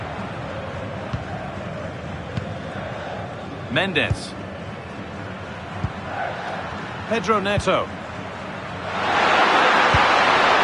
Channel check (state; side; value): identical; both; correlation 1.00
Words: Mendes. Pedro Neto.